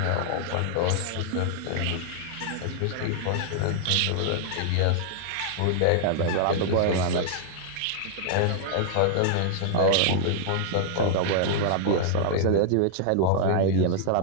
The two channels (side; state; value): both; different; correlation -0.01